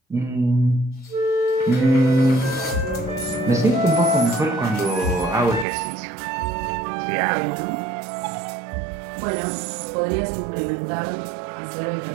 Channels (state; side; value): drops out; left; at 5.7 s